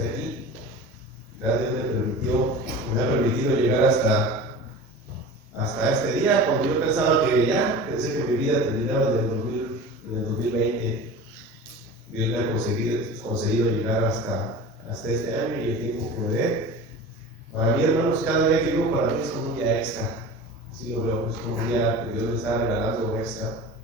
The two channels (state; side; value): normal; both; correlation 0.35